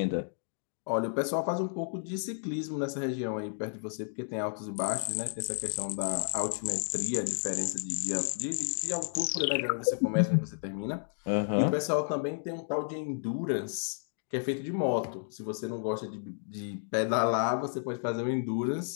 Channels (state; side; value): silent; right; digital silence